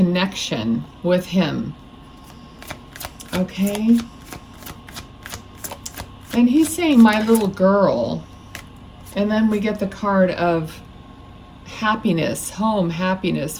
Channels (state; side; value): identical; both; correlation 1.00